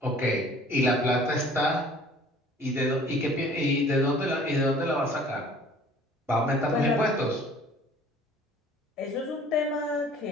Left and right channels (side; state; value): both; normal; correlation 0.51